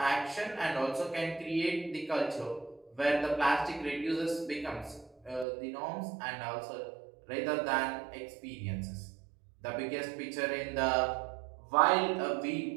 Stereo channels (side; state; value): left; drops out; at 5.5 s